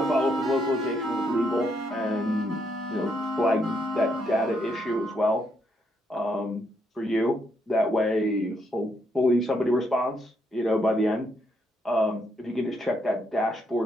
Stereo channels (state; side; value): normal; both; correlation 0.75